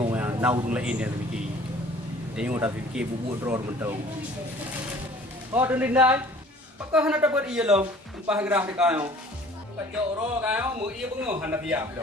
yang nau tung lain dia fikir. Tengok tak fikir bubuk drone mentau. Oh, dindai. Pakah hendak dapat iya lo. Empah gerah dekat kayo. Kajok ro kayo mu iya bengoh hendak biap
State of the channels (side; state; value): both; normal; correlation 0.51